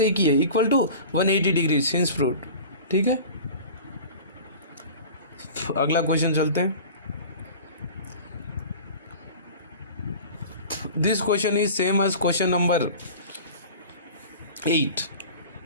ही है, equal to 180 degree. Hence proved, ठीक है। अगला क्वेश्चन चलते हैं। This question is same as question number 8,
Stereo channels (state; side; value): inverted; both; correlation -0.39